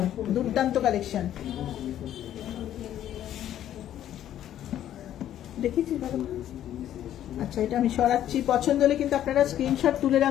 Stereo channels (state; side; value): quieter; right; 11.5 dB